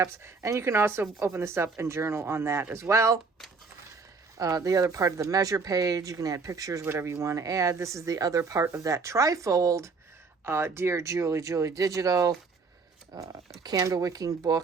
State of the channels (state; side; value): quieter; left; 4.4 dB